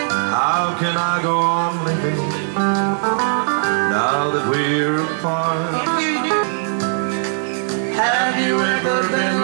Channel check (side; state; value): left; silent; 63 dB below the other